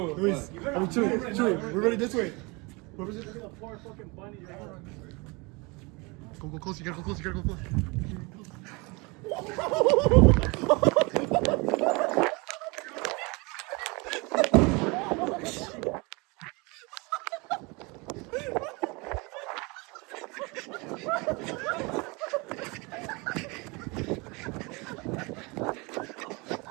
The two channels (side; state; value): left; quieter; 27.3 dB